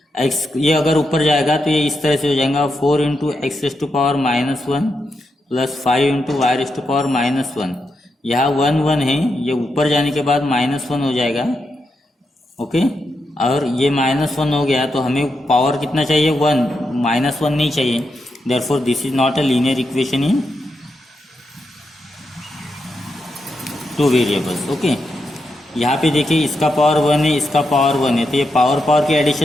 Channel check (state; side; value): normal; both; correlation 0.85